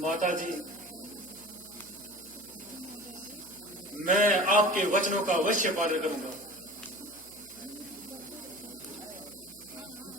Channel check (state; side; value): noise; right; hum, 26 dB below the sound